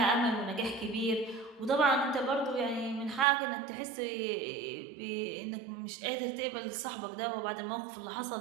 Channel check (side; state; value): left; drops out; at 3.2 s